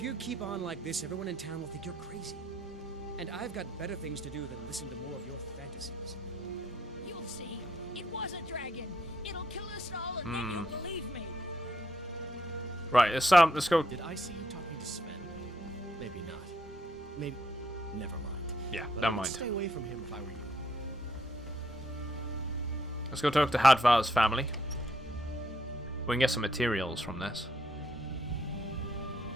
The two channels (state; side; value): normal; both; correlation 0.72